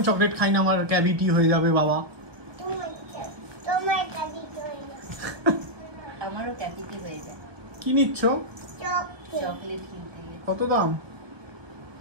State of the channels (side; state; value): left; late; 1.3 ms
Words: চকলেট খাই না, আমার ক্যাভিটি হয়ে যাবে বাবা। আমারও ক্যাভিটি হয়ে যায়। কি নিচ্ছ? চকলেট কিনতে গেলে। কত দাম?